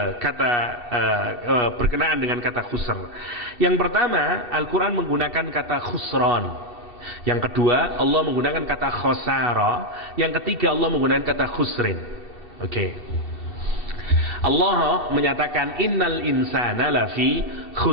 berkenaan dengan kata khusr. Yang pertama Al-Quran menggunakan kata khusron. Yang kedua Allah menggunakan kata khosara. Yang ketiga Allah menggunakan kata khusrin. Oke. Allah menyatakan innal insana lafi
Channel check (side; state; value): right; late; 2.7 ms